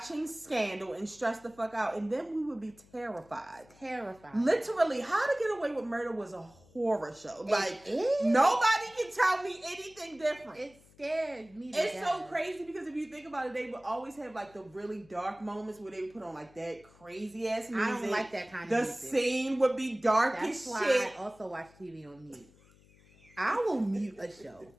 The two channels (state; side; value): noise; left; hum, 27 dB below the sound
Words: Scandal and stress the fuck out. And then we would be terrified. Literally, How to Get Away with Murder was a horror show. Like, nobody can tell me anything different. It scared me. It's so crazy because if you think about it, they would always have like the really dark moments where they would put on like that crazy ass music. I don't like that kind of music. The scene would be dark as shit. That's why I also watch TV on mute. I will mute a show